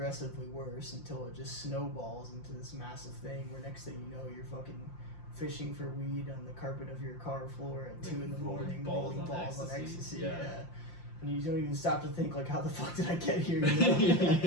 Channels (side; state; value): right; late; 5.7 ms